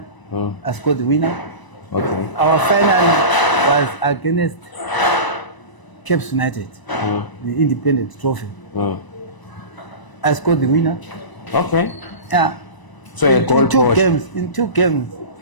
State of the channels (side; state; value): right; late; 1.0 ms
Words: I scored the winner. Okay. Our final was against Caps United, the independent trophy. I scored the winner. Okay. Yeah. So in two games,